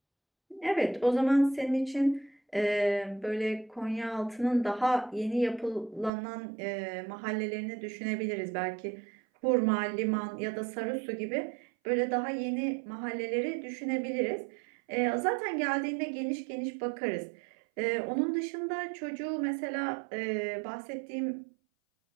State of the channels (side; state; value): left; drops out; at 6.1 s